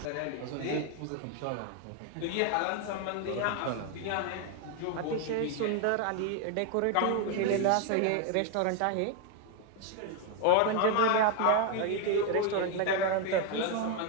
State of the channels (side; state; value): both; different; correlation 0.01